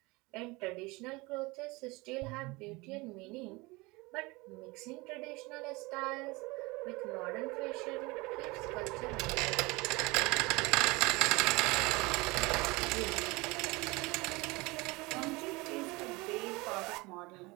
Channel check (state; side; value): quieter; left; 23.9 dB